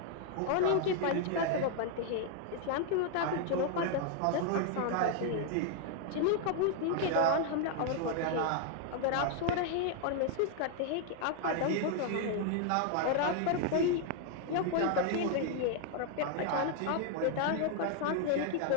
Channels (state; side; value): different; both; correlation 0.00